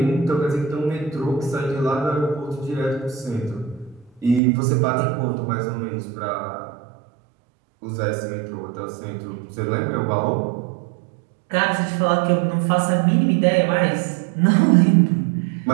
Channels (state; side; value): drops out; left; at 4.4 s